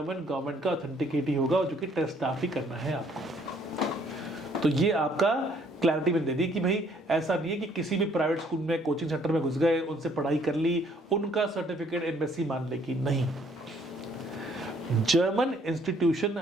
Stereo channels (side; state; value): both; normal; correlation 0.63